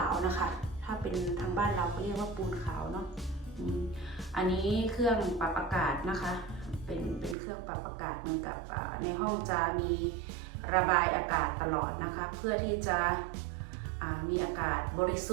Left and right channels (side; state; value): left; drops out; at 7.4 s